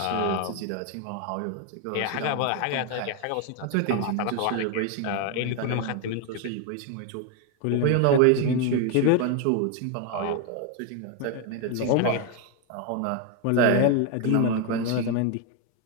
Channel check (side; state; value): both; different; correlation 0.01